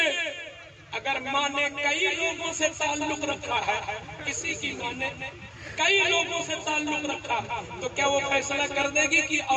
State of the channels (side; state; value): both; identical; correlation 1.00